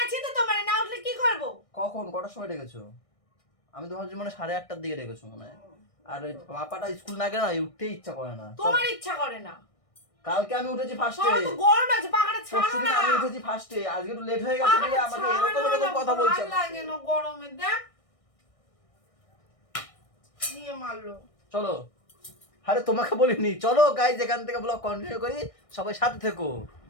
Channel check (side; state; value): right; late; 1.6 ms